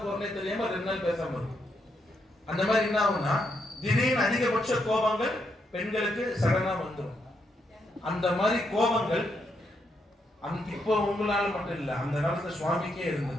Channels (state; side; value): normal; both; correlation 0.79